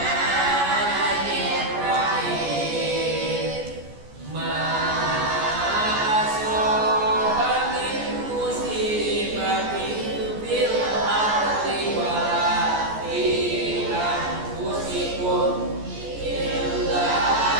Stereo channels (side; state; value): left; late; 14 ms